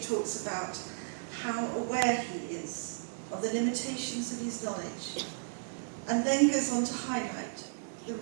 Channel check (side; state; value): left; silent; digital silence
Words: talks about how aware he is of the limitations of his knowledge, and then goes on to highlight the